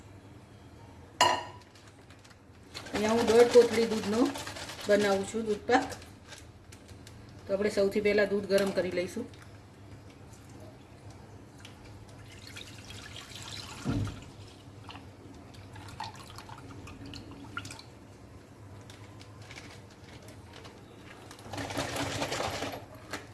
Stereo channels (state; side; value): identical; both; correlation 1.00